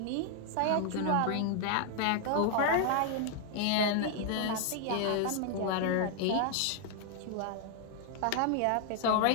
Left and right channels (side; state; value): both; different; correlation 0.00